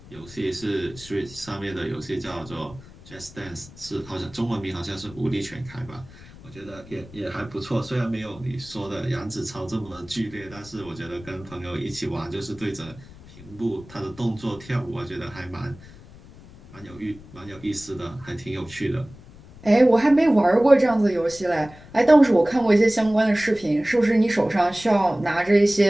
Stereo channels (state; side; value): noise; left; rumble, 20 dB below the sound